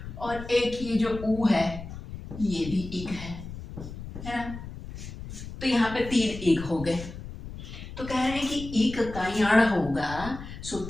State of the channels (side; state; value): left; noise; rumble, 11 dB below the sound